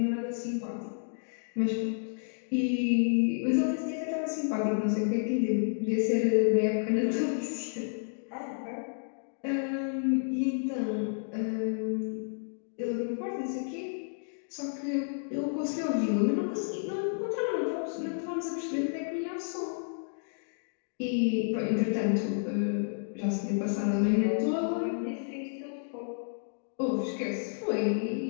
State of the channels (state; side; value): silent; right; digital silence